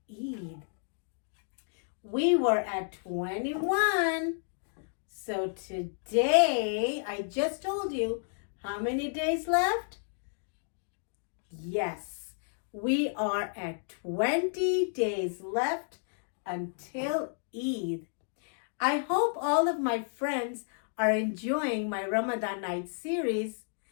Eid. We were at 21. So today, I just told you how many days left? Yes, we are at 20 days left until Eid. I hope all of my friends are enjoying my Ramadan night series.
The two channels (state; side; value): silent; right; digital silence